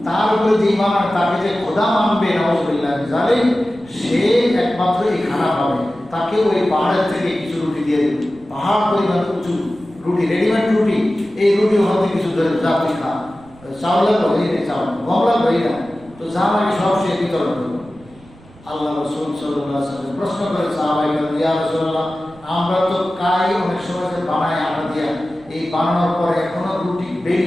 তার উপরে যে ঈমান আর তাকে যে খোদা মানবে নাউযুবিল্লাহ জালিম, সে একমাত্র এই খানা পাবে। তাকে ওই পাহাড়ের থেকে কিছু রুটি দিয়ে দেবে, পাহাড় পরিমাণ উঁচু রুটি, রেডিমেড রুটি। এই রুটি হতে কিছু ধরে যাত্রী খা, চাউলের বই নেই, চাউল গমলার বই না, তো যা লাগে সব সে বিতরণ করবে। আল্লাহ রাসূল সাল্লাল্লাহু আলাইহি ওয়াসাল্লাম প্রশ্ন করে সাহাবায়ে কেরাম, ইয়া রাসূলুল্লাহ আমরা তো কাই অনেক সময় যে বানায় আটা দিয়া, এই বানানোর পরে এখনো রুটি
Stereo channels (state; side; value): noise; right; rumble, 25 dB below the sound